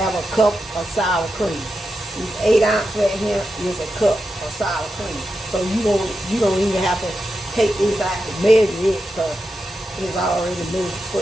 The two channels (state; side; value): normal; both; correlation 0.88